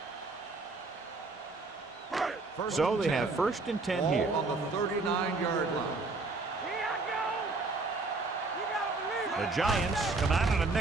So they have 1st and 10 here. On the 39-yard line. The Giants come out in a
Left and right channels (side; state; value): left; quieter; 3.6 dB